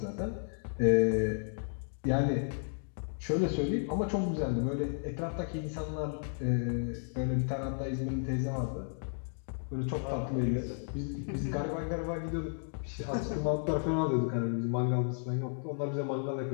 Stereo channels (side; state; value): right; silent; digital silence